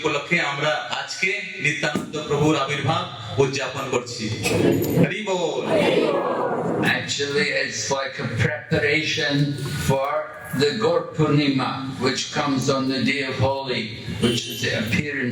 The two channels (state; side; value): identical; both; correlation 1.00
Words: আমরা আজকে নিত্যানন্দ প্রভুর আবির্ভাব উদযাপন করছি। হরি বল। Actually, it's like a preparation for the Gaur Purnima, which comes on the day of Holi, which is the